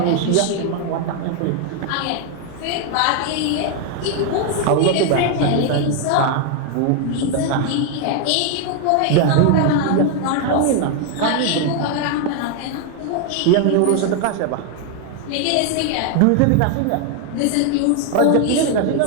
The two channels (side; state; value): both; different; correlation 0.00